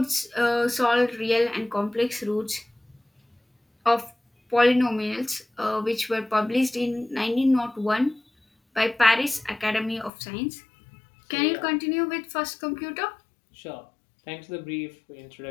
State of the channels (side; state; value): right; drops out; at 10.1 s